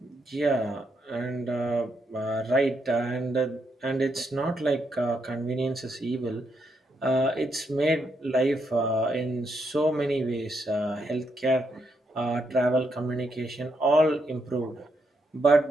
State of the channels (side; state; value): both; normal; correlation 0.79